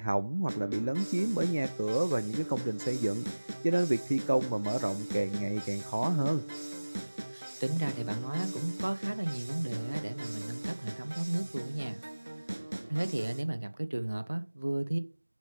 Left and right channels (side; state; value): both; inverted; correlation -1.00